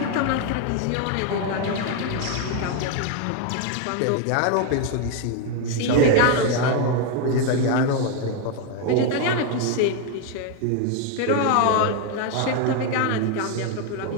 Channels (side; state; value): both; different; correlation 0.01